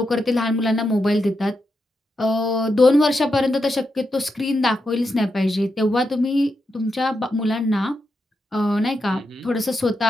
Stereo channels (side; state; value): both; normal; correlation 0.85